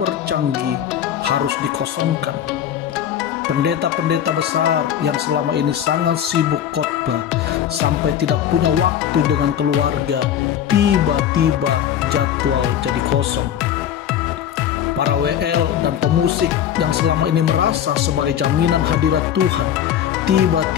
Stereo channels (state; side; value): quieter; right; 10.0 dB